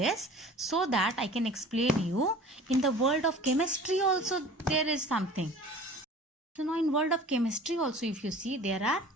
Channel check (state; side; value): normal; both; correlation 0.43